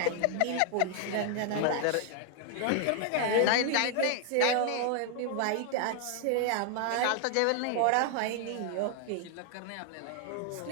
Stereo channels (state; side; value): different; both; correlation 0.00